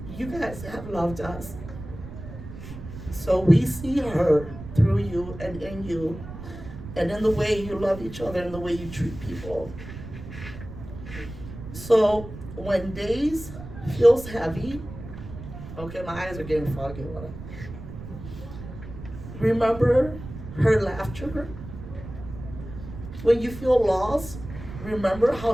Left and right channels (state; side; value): noise; right; rumble, 12 dB below the sound